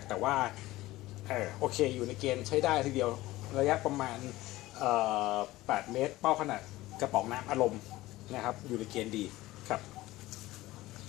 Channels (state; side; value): quieter; right; 17.7 dB